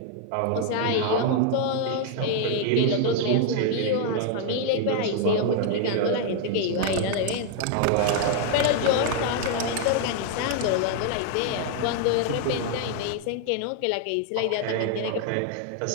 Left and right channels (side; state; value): both; different; correlation 0.00